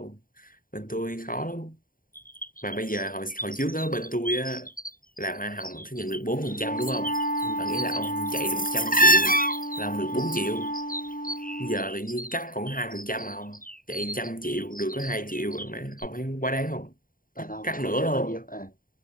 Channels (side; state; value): right; late; 0.41 ms